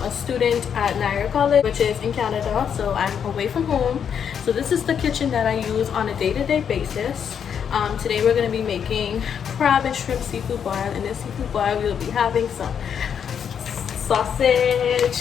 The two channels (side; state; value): right; quieter; 7.8 dB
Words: a student at Niagara College, which is in Canada, so I'm away from home. So this is the kitchen that I use on a day-to-day basis. Today we're going to be making crab and shrimp seafood boil. In this seafood boil we'll be having some